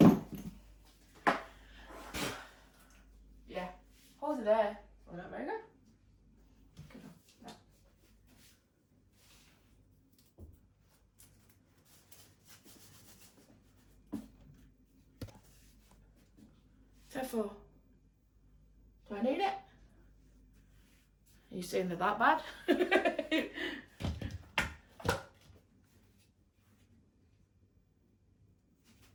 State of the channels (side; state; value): both; identical; correlation 1.00